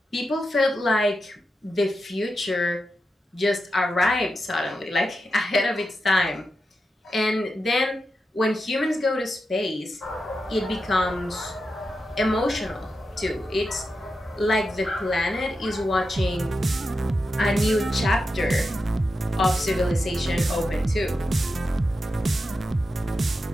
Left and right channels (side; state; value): both; normal; correlation 0.89